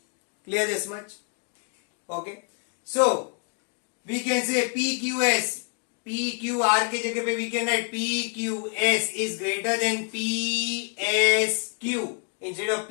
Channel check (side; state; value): right; quieter; 37.8 dB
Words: Clear this much? Okay. So we can say PQR के जगह पे we can write PQS is greater than PSQ instead of